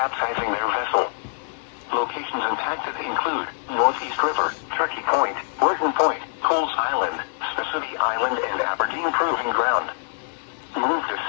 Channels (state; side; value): silent; right; 62 dB below the other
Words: their vessel. Locations impacted include Northeast River, Turkey Point, Burton Point, Pools Island, Spessity Island, and Aberdeen Proving Ground. Move to